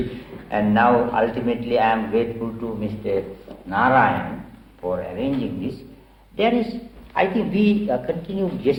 and now ultimately I am grateful to Mr. Narayan for arranging this. There is, I think we continued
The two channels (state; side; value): identical; both; correlation 1.00